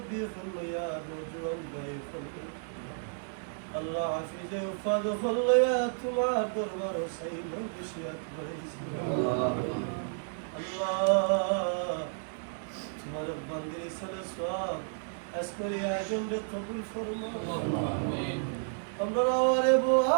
হইয়া নজওয়ান ভাই ফরমাই আল্লাহ হাফিজে উফাদ হইয়া তোমার দরবার সেই মজলিসিয়াত করেছি আল্লাহ তোমার বান্দে সালাত আজকের আয়োজনকে কবুল ফরমাও আমিন আমরা আওয়ারে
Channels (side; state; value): left; silent; digital silence